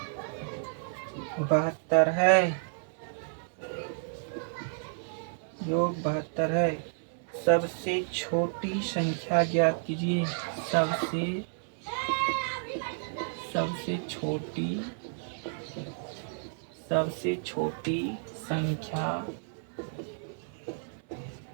72 है, योग 72 है। सबसे छोटी संख्या ज्ञात कीजिए, सबसे छोटी संख्या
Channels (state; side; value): silent; left; digital silence